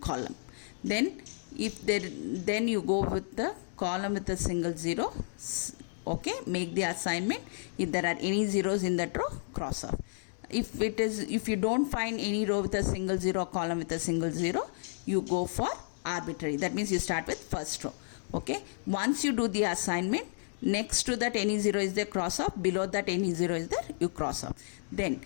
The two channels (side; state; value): right; silent; digital silence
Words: column. Then then you go with the column with a single zero. Okay, make the assignment. If there are any zeros in that row, cross off. If you don't find any row with a single zero, column with a single zero, you go for arbitrary. That means you start with first row. Okay, once you do the assignment, next to that any zero is there, cross off. Below that any zero is there, you cross off. Then